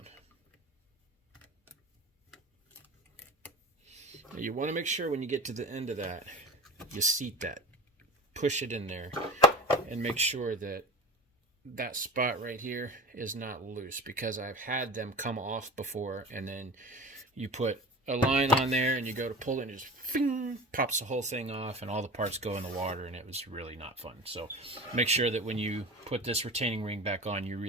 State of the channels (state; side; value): normal; both; correlation 0.34